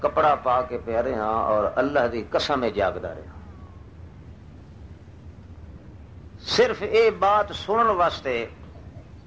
کپڑا پا کے پیا رہا اور اللہ دی قسم جاگدا رہا، صرف یہ بات سنن واسطے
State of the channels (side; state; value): both; identical; correlation 1.00